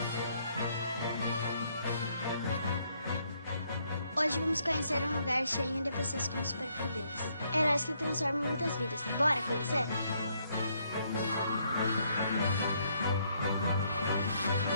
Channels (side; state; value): both; inverted; correlation -0.71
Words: Hoje vamos conhecer um lugar cheio de pessoas com superpoderes. Heróis que transformam muitas vidas. Bora conhecer?